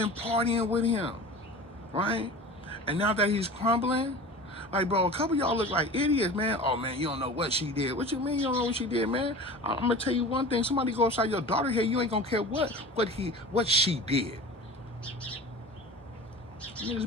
partying with him, right? And now that he's crumbling, like, bro, a couple of y'all look like idiots, man. Oh, man, you don't know what she did. What you mean you don't know what she did, man? I'm going to tell you one thing. Somebody go outside your daughter here, you ain't going to care what she did. You niggas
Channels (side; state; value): both; normal; correlation 0.36